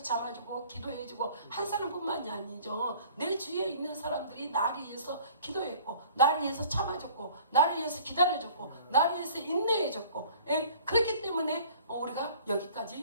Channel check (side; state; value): both; inverted; correlation -0.50